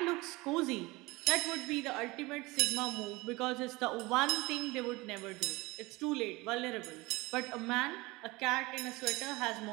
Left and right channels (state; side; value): quieter; left; 22.2 dB